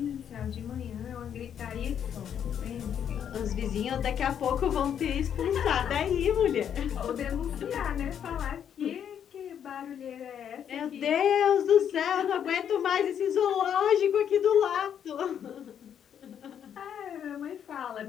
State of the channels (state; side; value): quieter; right; 8.8 dB